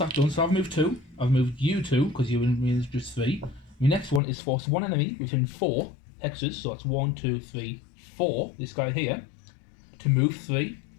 done. So I've moved 2. I've moved you 2 because you and me is just 3. My next one is force one enemy within 4 hexes. So that's 1, 2, 3, 4. This guy here to move 3.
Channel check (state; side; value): drops out; right; at 4.2 s